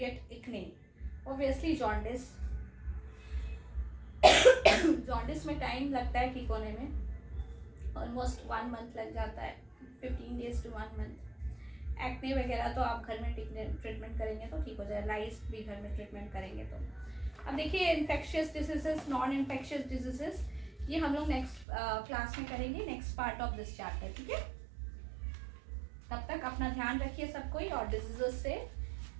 acne. Obviously jaundice. jaundice में time लगता है ठीक होने में, almost 1 month लग जाता है, 15 days to 1 month. Acne वगैरह तो आप घर में ट्रीटमेंट करेंगे तो ठीक हो जाएगा, लाइस भी घर में ट्रीटमेंट करेंगे तो। अब देखिए infectious diseases, non infectious diseases, ये हम लोग नेक्स्ट क्लास में करेंगे, next part of this chapter, ठीक है। तब तक अपना ध्यान रखिए सब कोई और डिजीजेस से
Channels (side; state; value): left; drops out; at 21.7 s